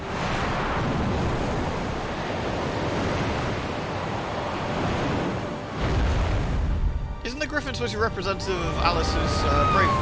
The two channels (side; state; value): both; identical; correlation 1.00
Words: Isn't the griffin supposed to be representative of Alice's